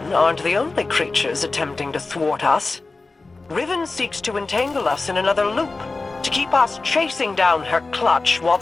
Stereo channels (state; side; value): quieter; right; 3.6 dB